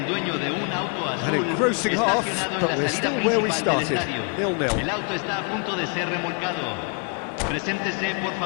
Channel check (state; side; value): quieter; right; 37.8 dB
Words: An engrossing half, but we're still where we started, 0-0.